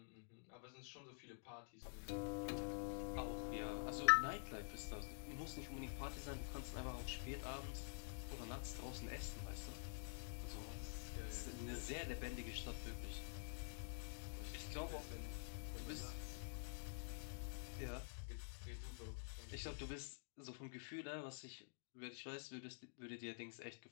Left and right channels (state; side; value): silent; right; digital silence